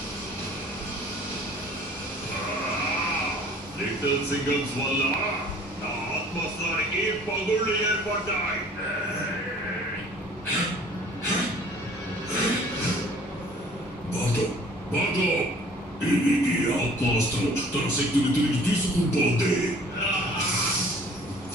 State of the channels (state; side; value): normal; both; correlation 0.52